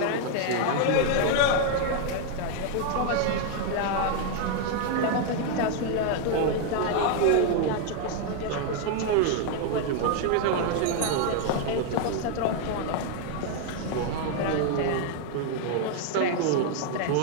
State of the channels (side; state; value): both; different; correlation 0.00